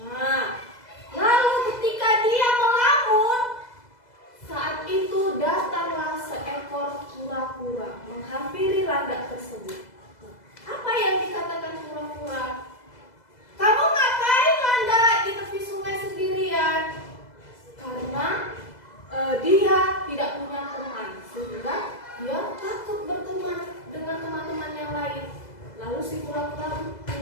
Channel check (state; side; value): late; right; 2.0 ms